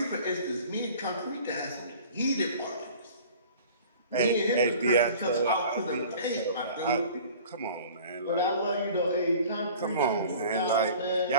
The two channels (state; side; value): inverted; both; correlation -0.45